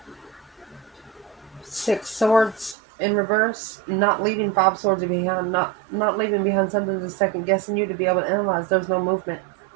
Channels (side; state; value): left; drops out; at 2.8 s